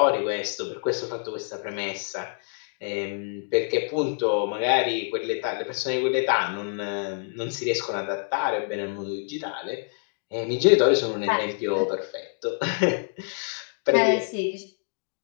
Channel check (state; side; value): silent; right; digital silence